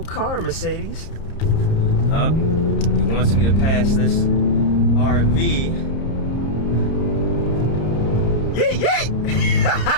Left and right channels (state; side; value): late; right; 30 ms